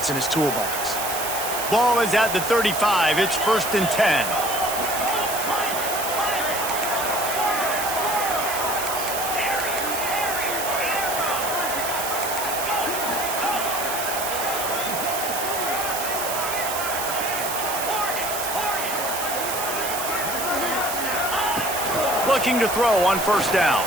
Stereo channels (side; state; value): right; noise; hiss, 5 dB below the sound